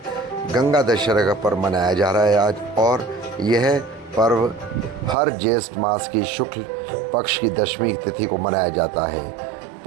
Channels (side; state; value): left; drops out; at 5.2 s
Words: गंगा दशहरा का पर्व मनाया जा रहा है आज, और यह पर्व हर ज्येष्ठ मास की शुक्ल पक्ष की दशमी तिथि को मनाया जाता है।